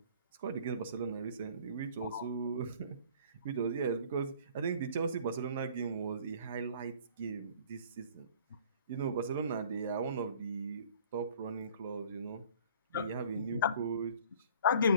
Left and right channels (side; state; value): both; inverted; correlation -0.51